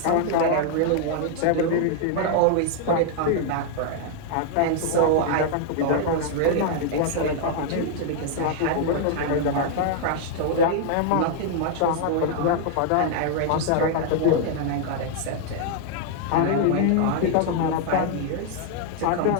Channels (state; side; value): different; both; correlation 0.00